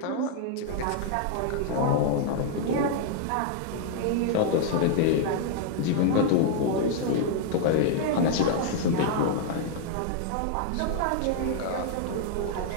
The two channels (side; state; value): both; different; correlation 0.00